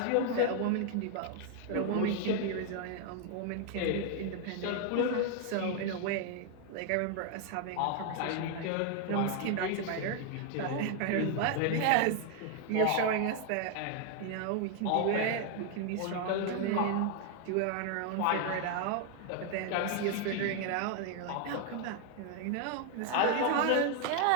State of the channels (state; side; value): different; both; correlation 0.01